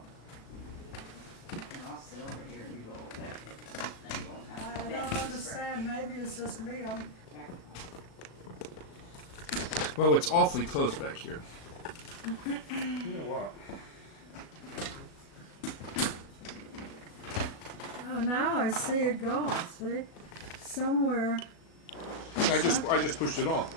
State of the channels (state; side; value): late; right; 37 ms